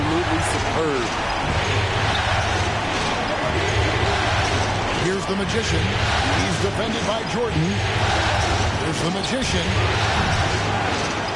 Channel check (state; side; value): identical; both; correlation 1.00